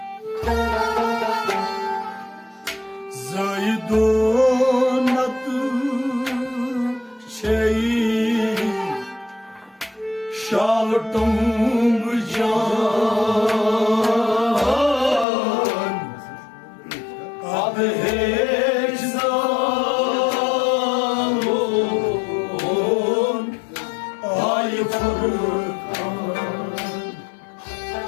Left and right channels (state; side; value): drops out; right; at 15.2 s